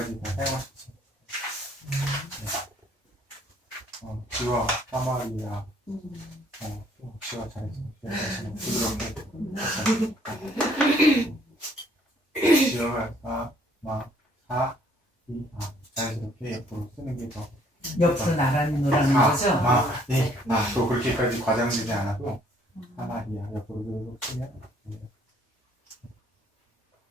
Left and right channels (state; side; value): normal; both; correlation 0.63